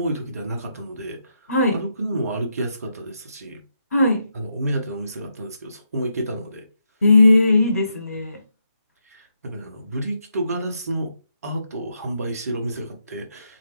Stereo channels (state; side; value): inverted; both; correlation -0.81